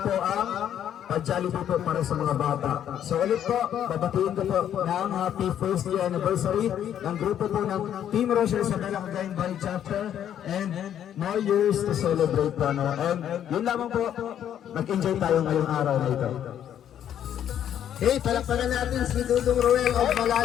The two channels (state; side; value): quieter; right; 10.1 dB